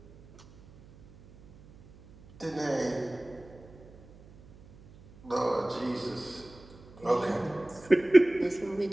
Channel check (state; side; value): noise; right; hum, 23 dB below the sound